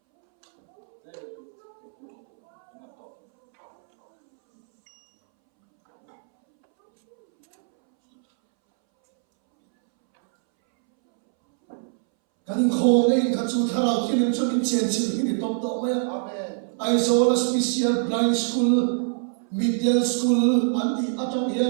cái linh khô này cái chú thà nào thiên cho mình chém chém thì to mày I saw a special blind school middle school anh đi ở trong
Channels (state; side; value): silent; left; 63 dB below the other